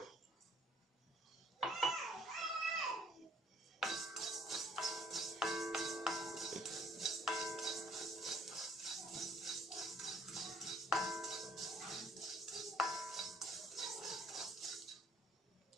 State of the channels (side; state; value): both; normal; correlation 0.60